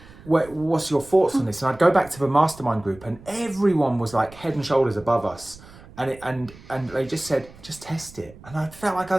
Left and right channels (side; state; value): right; noise; rumble, 21 dB below the sound